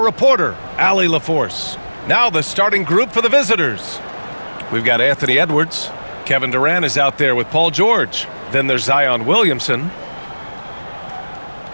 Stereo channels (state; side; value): inverted; both; correlation -1.00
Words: reporter, Allie LaForce. Now the starting group for the visitors. We've got Anthony Edwards. Kevin Durant is out there with Paul George. Then there's Zion Williamson.